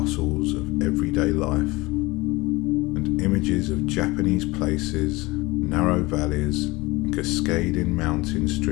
of everyday life, and images of Japanese places, narrow valleys, and cascading mountain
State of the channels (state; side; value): quieter; right; 22.4 dB